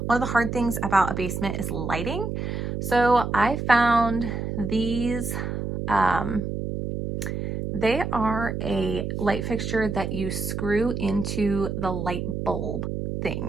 One of the hard things about a basement is lighting. So I found these, they are a light fixture that you screw into the light bulb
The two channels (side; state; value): right; noise; hum, 3 dB below the sound